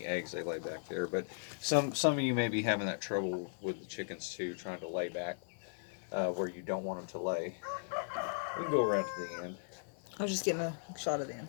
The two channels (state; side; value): silent; right; 53 dB below the other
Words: eggs they lay back there. But some of you may be having that trouble with the chickens too, trying to lay back where you don't want them to lay. We can go around to the end. I was just getting a shot of the